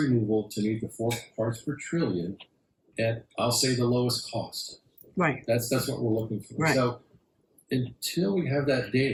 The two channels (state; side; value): identical; both; correlation 1.00